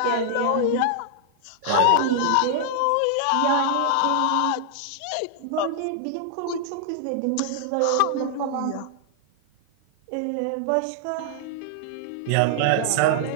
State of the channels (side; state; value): both; different; correlation -0.01